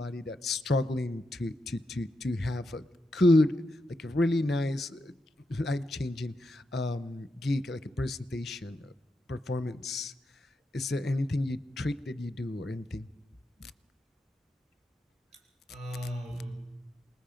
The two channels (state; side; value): normal; both; correlation 0.85